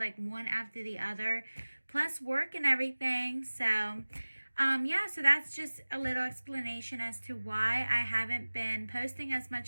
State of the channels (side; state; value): both; inverted; correlation -1.00